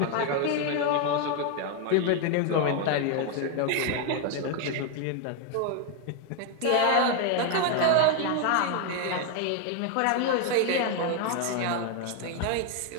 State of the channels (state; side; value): different; both; correlation 0.01